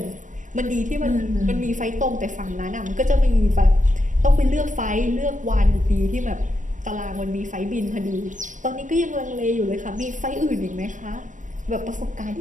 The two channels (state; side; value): late; left; 0.37 ms